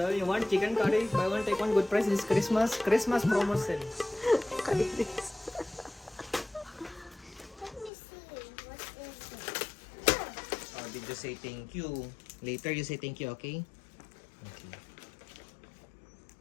you want chicken curry? Buy one take one, good price. This Christmas promotion. Let me see. What is it? Oh, did you say thank you? Later you say thank you, okay? Okay.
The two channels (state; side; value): drops out; right; at 7.9 s